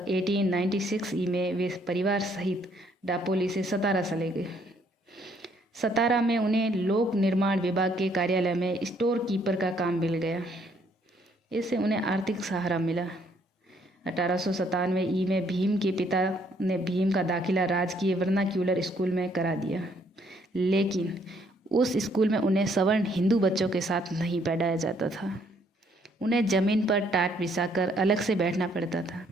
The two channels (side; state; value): both; normal; correlation 0.67